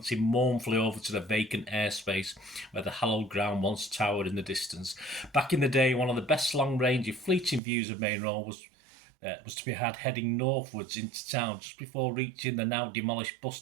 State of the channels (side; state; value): left; drops out; at 7.6 s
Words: mournfully over to the vacant airspace where the hallowed ground once towered in the distance. Back in the day, one of the best long-range fleeting views of Maine Road was to be had heading northwards into town just before reaching the now demolished bus